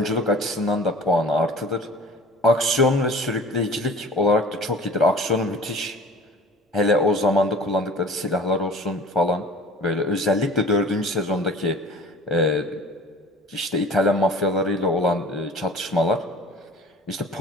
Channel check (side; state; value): both; normal; correlation 0.44